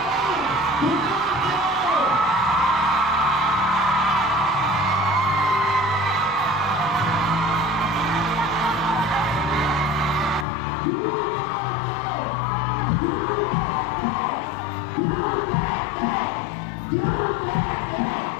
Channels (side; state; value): right; drops out; at 10.5 s